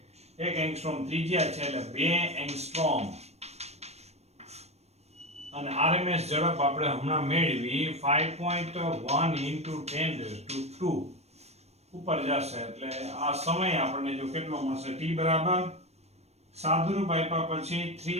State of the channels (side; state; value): left; late; 0.31 ms